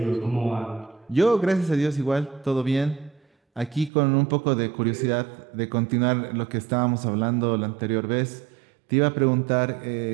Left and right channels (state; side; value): drops out; left; at 3.9 s